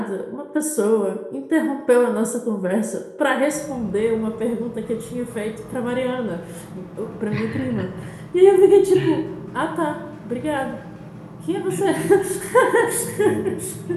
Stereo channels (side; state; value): both; identical; correlation 1.00